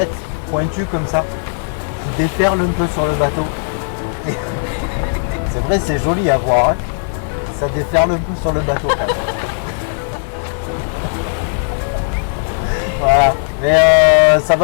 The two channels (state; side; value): silent; right; digital silence